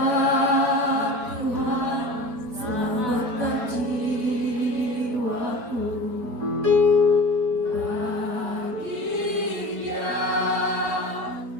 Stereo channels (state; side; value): late; left; 4.3 ms